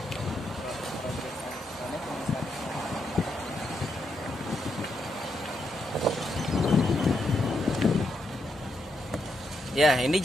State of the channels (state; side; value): normal; both; correlation 0.81